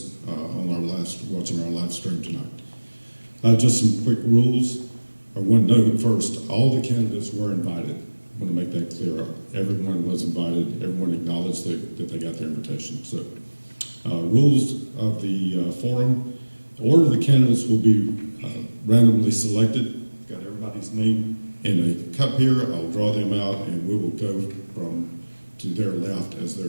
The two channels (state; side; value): inverted; both; correlation -1.00